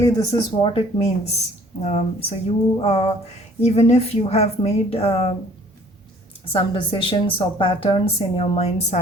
this is what it means. Even if you have made some decisions or patterns in your mind's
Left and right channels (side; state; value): both; normal; correlation 0.55